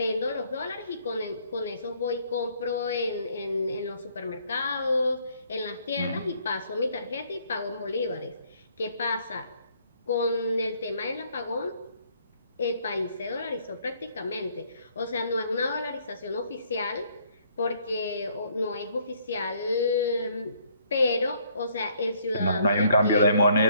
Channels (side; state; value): both; inverted; correlation -0.65